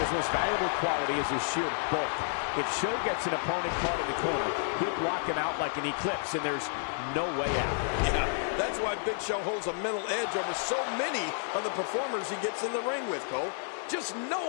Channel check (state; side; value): silent; right; digital silence